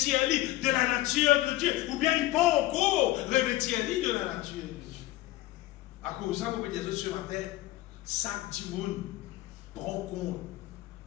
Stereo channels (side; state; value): right; quieter; 16.7 dB